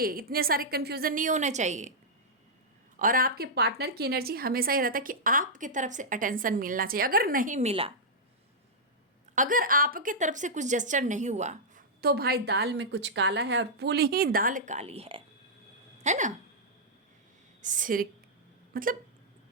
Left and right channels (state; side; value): normal; both; correlation -0.09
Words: इतने सारे कन्फ्यूज़न नहीं होना चाहिए। और आपके पार्टनर की एनर्जी हमेशा ही रहता है कि आपकी तरफ से अटेंशन मिलना चाहिए। अगर नहीं मिला, अगर आपके तरफ से कुछ जेस्चर नहीं हुआ, तो भाई दाल में कुछ काला है और पूरी ही दाल काली है ना। सिर मतलब